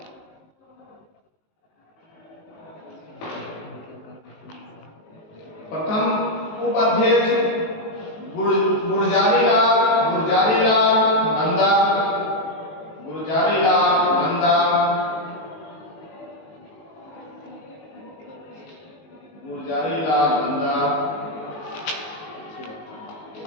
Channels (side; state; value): right; late; 19 ms